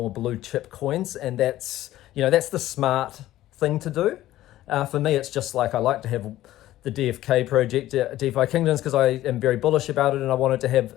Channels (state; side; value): quieter; right; 14.6 dB